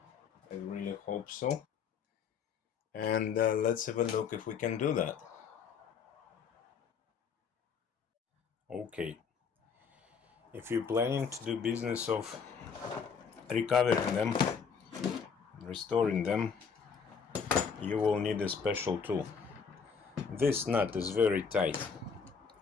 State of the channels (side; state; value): right; quieter; 6.2 dB